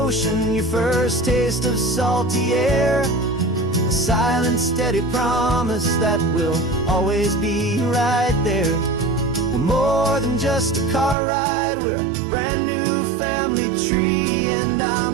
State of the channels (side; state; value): left; drops out; at 11.2 s